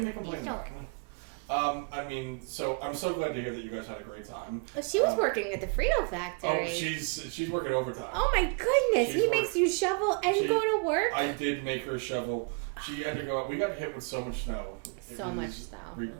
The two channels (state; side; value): quieter; left; 37.0 dB